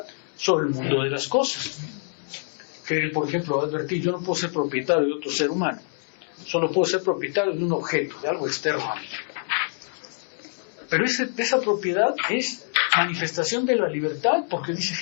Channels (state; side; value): silent; right; 61 dB below the other